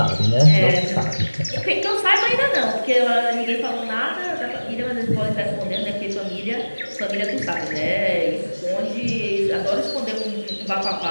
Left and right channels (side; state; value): both; inverted; correlation -1.00